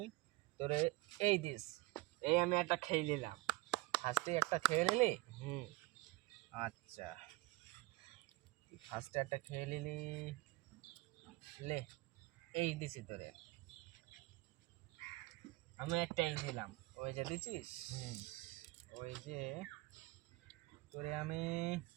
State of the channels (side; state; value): left; quieter; 21.5 dB